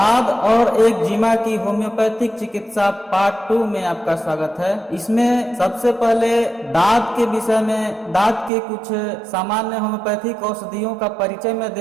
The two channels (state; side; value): drops out; left; at 8.5 s